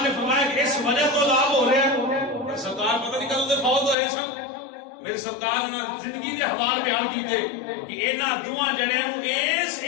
نے فرمایا کہ اس وجہ تو عذاب ہو رہا ہے سرکار پتہ نہیں کدوں فوت ہوئے سن میری سرکار نے زندگی کے حوال بیان کیتے کہ انہاں دوواں جڑیاں نو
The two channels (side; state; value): right; drops out; at 4.0 s